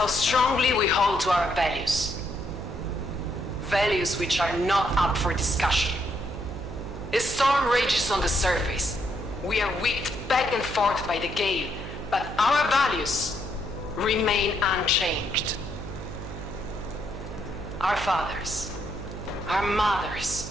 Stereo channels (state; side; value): noise; right; hum, 9 dB below the sound